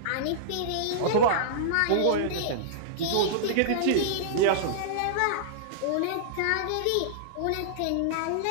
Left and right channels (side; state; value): both; different; correlation -0.02